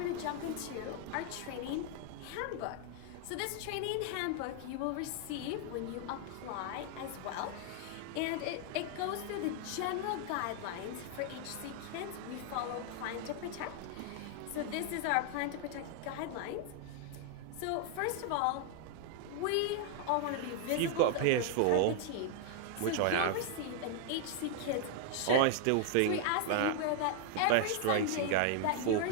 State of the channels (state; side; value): different; both; correlation 0.00